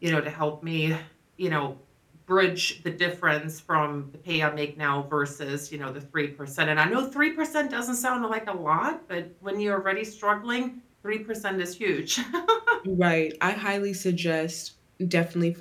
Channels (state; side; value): identical; both; correlation 1.00